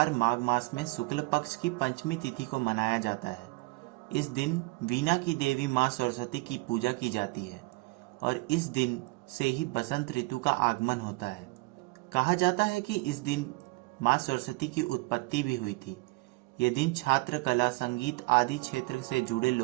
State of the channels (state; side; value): quieter; left; 24.5 dB